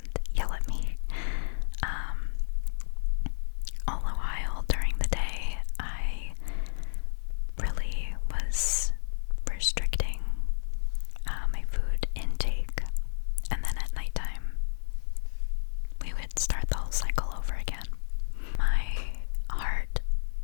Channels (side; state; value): right; silent; 57 dB below the other